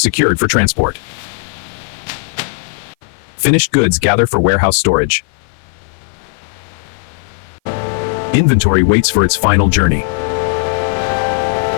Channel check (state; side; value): silent; right; 56 dB below the other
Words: secured for transport. Finished goods gather for warehouse storage. Inventory waits for its final journey.